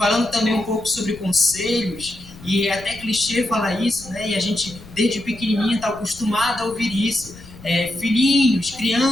também um pouco sobre conselhos, e é até clichê falar isso, e a gente desde pequenininho está acostumado a ouvir isso. Filhinhos,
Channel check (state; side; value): noise; left; rumble, 18 dB below the sound